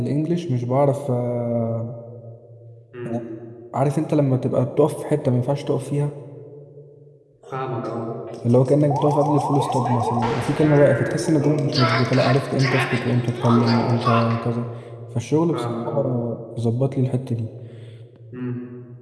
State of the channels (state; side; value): identical; both; correlation 1.00